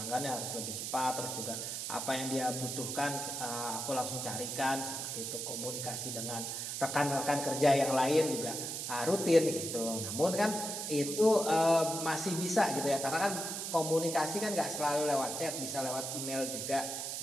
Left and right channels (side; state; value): right; noise; hiss, 4 dB below the sound